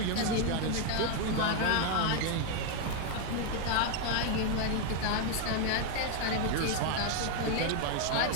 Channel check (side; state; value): both; different; correlation 0.01